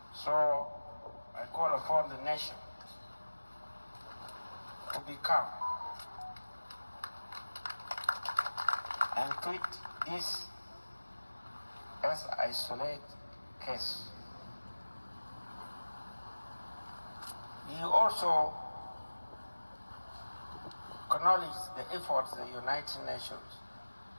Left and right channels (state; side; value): inverted; both; correlation -1.00